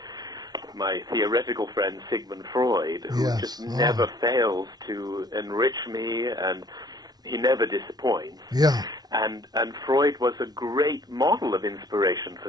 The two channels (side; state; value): left; late; 0.19 ms